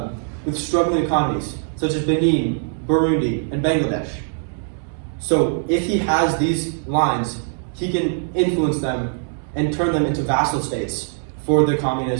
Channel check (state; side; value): silent; left; 65 dB below the other